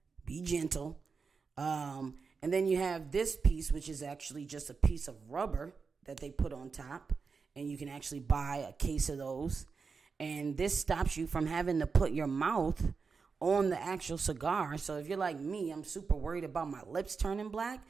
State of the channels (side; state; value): left; quieter; 5.1 dB